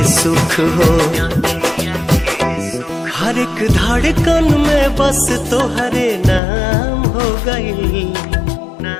सुख हो हर एक धड़कन में बस तोहरे नाम हो गई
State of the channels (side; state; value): right; drops out; at 6.4 s